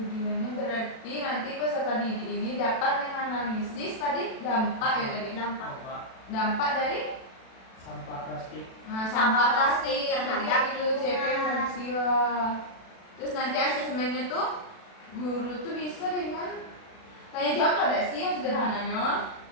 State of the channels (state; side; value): late; right; 36 ms